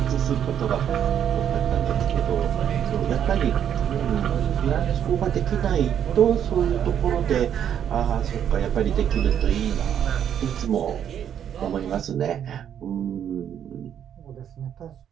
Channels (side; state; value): left; quieter; 9.3 dB